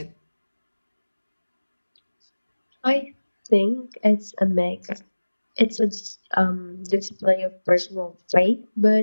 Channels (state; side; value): inverted; both; correlation -1.00